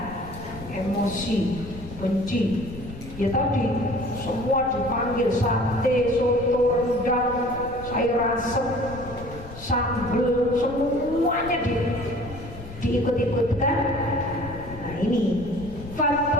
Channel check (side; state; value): left; noise; rumble, 14 dB below the sound